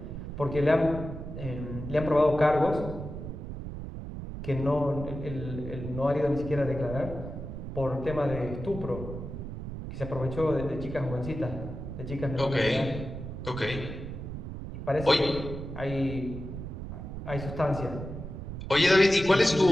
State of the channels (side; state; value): right; noise; rumble, 8 dB below the sound